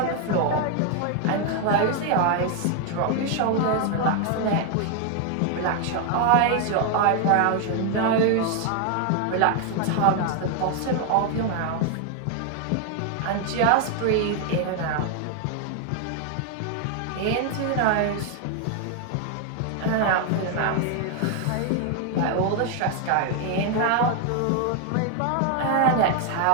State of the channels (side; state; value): both; different; correlation 0.00